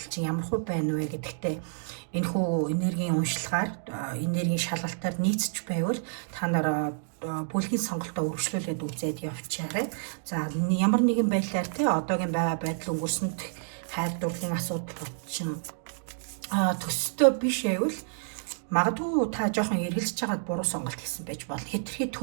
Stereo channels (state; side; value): silent; left; digital silence